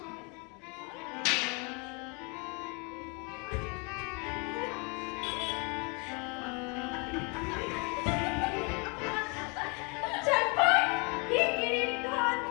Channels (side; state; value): right; quieter; 32.0 dB